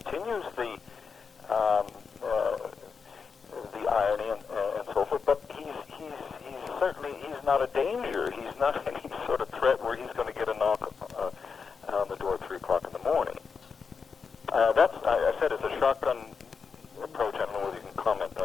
the irony and so forth. But he's certainly not a danger. He's not any sort of threat where he's going to get a knock on the door at 3 o'clock in the morning. I said it's a shotgun approach. I don't know whether you can comment on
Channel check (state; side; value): quieter; right; 5.6 dB